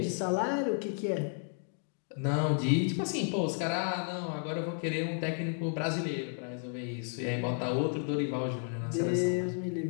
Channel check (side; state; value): right; silent; 56 dB below the other